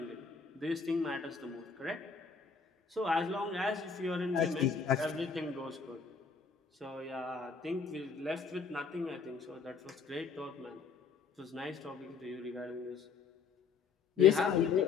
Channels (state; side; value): quieter; right; 5.5 dB